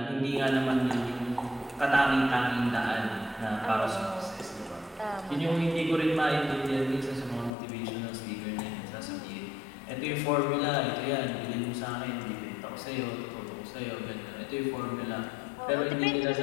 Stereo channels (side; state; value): right; drops out; at 7.5 s